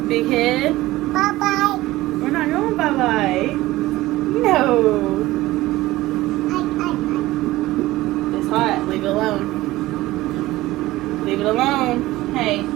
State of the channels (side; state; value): left; quieter; 17.5 dB